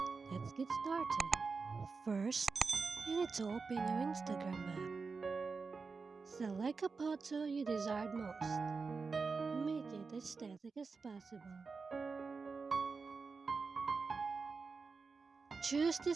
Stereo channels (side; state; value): left; quieter; 4.6 dB